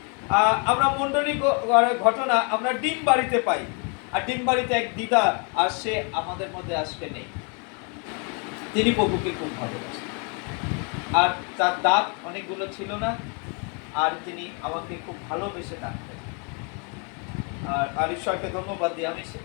আমরা মণ্ডলী ঘটনা আমরা ডিম বাড়িতে পাই। আর ডিম বাড়িতে এক দিদা, আর সে আমাদের মধ্যে আজকে নেই। তিনি প্রভুকে খুব ভালোবাসেন, আর তার দাঁত অনেকগুলো ছিল না, আর তিনি আমাকে খুব ভালোবেসে ডাকতেন। আর ঈশ্বরকে ধন্যবাদ দিই, আমি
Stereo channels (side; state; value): right; quieter; 37.0 dB